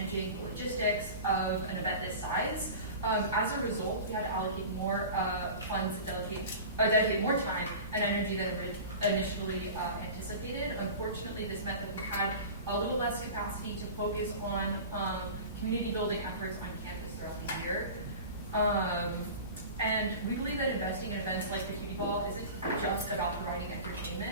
the logistics of an event this size. As a result, we had to allocate more funds and dedicate more time and energy than initially anticipated. Unfortunately, this meant that we had a little less capacity to focus on community building efforts on campus throughout the year. And we believe that investing in events like the Cutie Ball isn't just about providing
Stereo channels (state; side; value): inverted; both; correlation -0.35